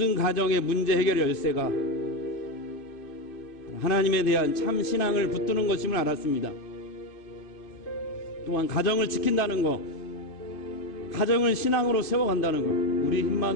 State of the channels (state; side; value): late; right; 2.6 ms